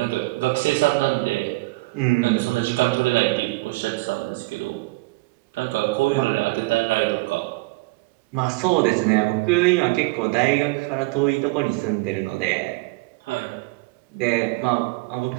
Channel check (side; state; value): left; quieter; 24.4 dB